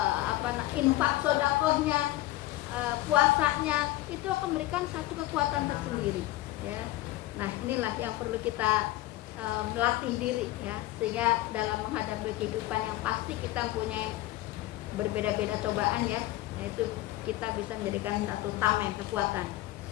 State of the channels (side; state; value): right; quieter; 17.0 dB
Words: infak sodakohnya, puasanya, itu akan memberikan satu kekuatan tersendiri ya. Nah inilah yang perlu kita melatih diri ya, sehingga dalam menghadapi kehidupan yang pasti kita mempunyai berbeda-beda cobaan ya, nah itu kita bisa menjadikan satu tameng kekuatan.